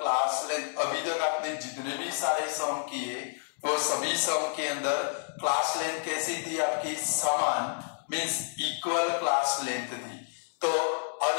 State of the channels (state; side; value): silent; right; digital silence